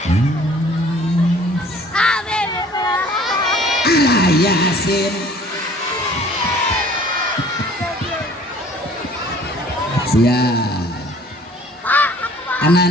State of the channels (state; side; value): normal; both; correlation 0.52